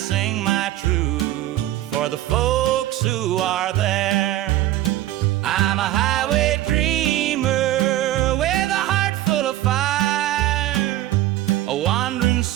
my truth for the folks who are there. I'm a highway dreamer with a heart full of fire, a wandering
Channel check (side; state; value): left; quieter; 14.5 dB